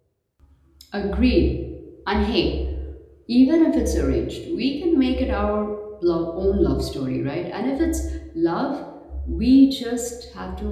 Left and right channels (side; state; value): both; identical; correlation 1.00